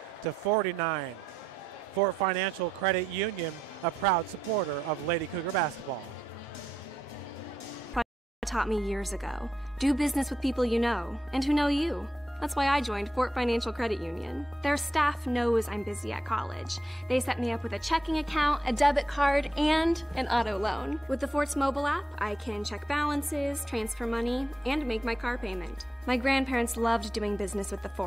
Fort Financial Credit Union, a proud supporter of Lady Cougar basketball. Taught me years ago. Do business with people you know and who know you. That's why I joined Fort Financial Credit Union. Their staff knows I'm busy at college. They set me up with a checking account, a debit card, and an auto loan. With the Fort's mobile app, I can check balances, transfer money, and make my car payment. My grandparents loved doing business with the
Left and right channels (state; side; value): normal; both; correlation 0.82